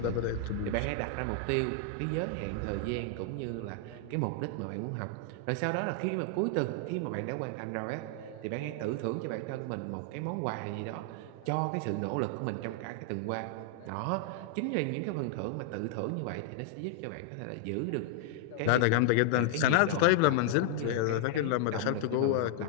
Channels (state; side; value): different; both; correlation 0.00